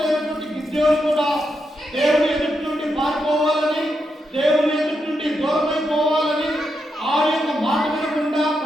అయినటువంటి గిద్యోను కూడా దేవుని ఎదుటి నుండి పారిపోవాలని, దేవుని ఎదుటి నుండి దూరమైపోవాలని, ఆ యొక్క మాట వినకుండా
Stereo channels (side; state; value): both; normal; correlation 0.84